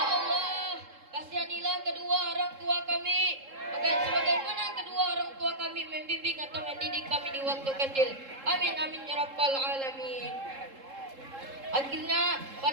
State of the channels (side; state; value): left; late; 3.7 ms